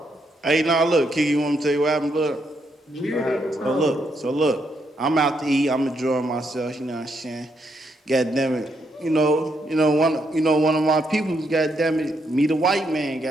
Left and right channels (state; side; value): normal; both; correlation 0.77